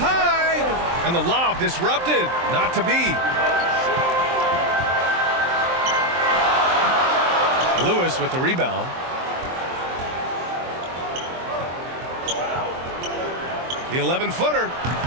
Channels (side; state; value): left; late; 23 ms